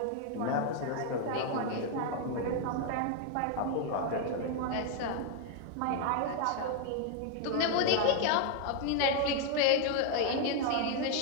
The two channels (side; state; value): both; different; correlation 0.00